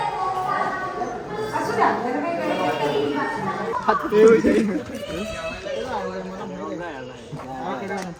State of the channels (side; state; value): both; identical; correlation 1.00